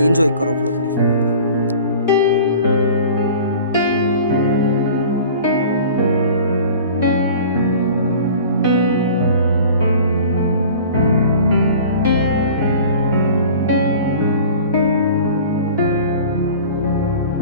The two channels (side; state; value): both; inverted; correlation -0.43